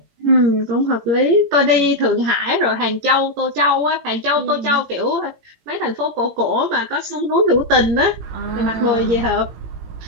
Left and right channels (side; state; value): left; late; 18 ms